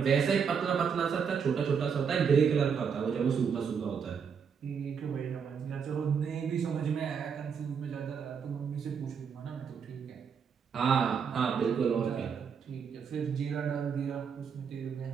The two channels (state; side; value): quieter; left; 6.6 dB